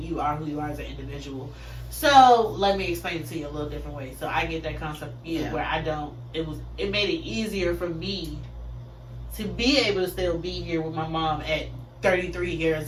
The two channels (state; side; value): identical; both; correlation 1.00